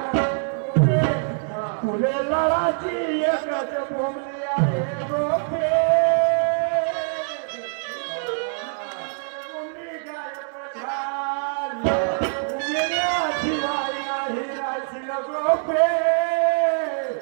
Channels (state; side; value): silent; left; digital silence